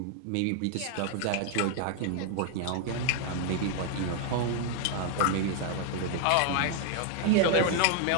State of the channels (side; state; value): both; different; correlation 0.00